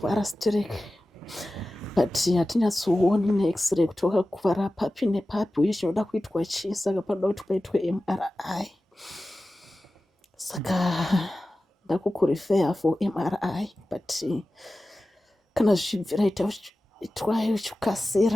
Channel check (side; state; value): both; normal; correlation 0.95